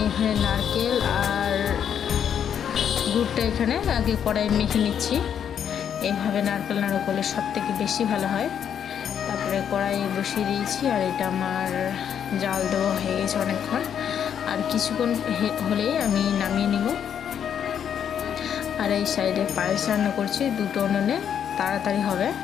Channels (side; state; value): right; quieter; 8.6 dB